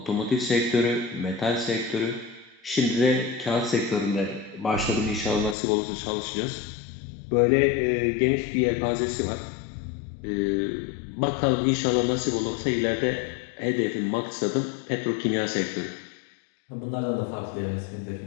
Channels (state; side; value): drops out; right; at 5.6 s